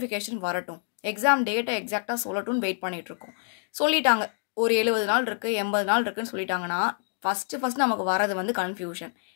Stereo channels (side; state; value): right; silent; digital silence